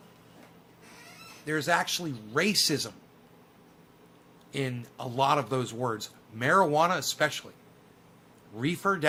There's actually racism in a lot of those words. Marijuana especially. Reefer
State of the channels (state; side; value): identical; both; correlation 1.00